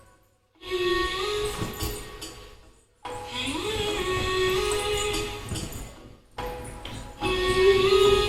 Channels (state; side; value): identical; both; correlation 1.00